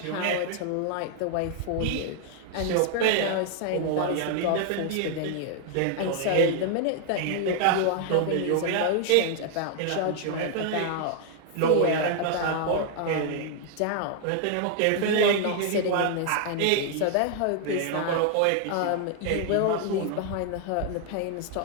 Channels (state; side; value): different; both; correlation 0.00